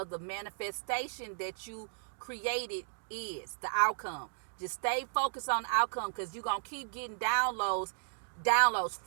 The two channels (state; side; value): silent; left; digital silence